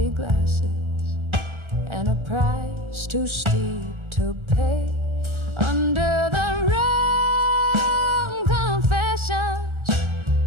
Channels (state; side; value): late; left; 1.3 ms